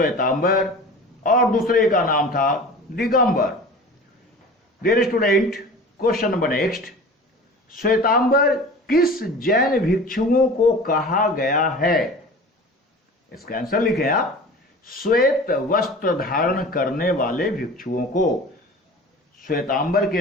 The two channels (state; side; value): normal; both; correlation 0.38